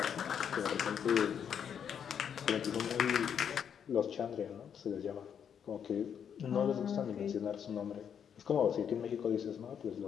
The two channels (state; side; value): quieter; right; 8.0 dB